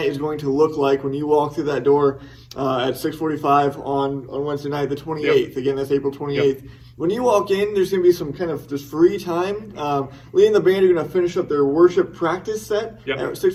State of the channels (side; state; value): both; identical; correlation 1.00